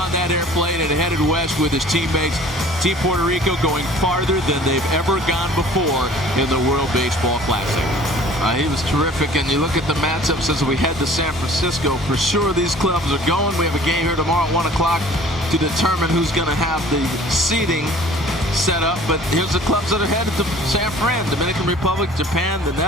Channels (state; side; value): normal; both; correlation 0.49